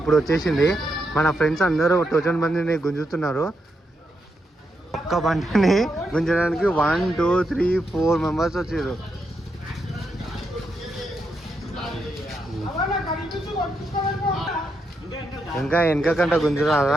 వచ్చేసింది. మన ఫ్రెండ్స్ అందరూ టోచన్ బండిని గుంజుతున్నారు. ఒక్క బండిని గుంజడానికి 1 2 3 4 మెంబర్స్ వచ్చారు. ఇంకా వెనకకంట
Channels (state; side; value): normal; both; correlation 0.82